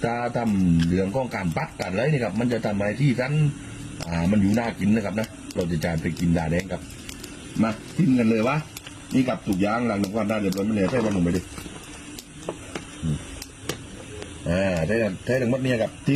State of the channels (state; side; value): identical; both; correlation 1.00